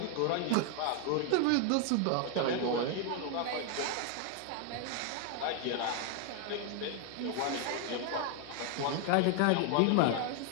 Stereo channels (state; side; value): different; both; correlation 0.00